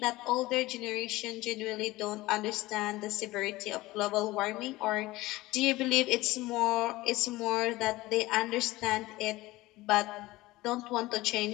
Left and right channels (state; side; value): quieter; right; 19.0 dB